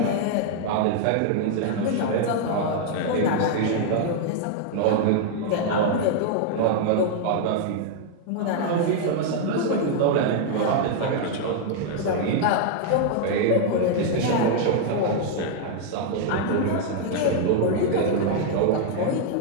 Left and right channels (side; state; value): both; different; correlation 0.00